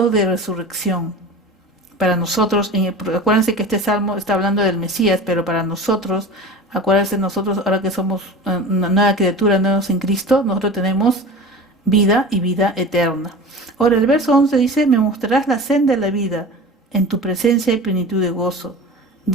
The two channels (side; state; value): both; normal; correlation 0.35